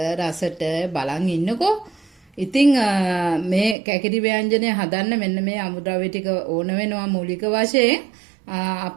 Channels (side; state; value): left; drops out; at 3.8 s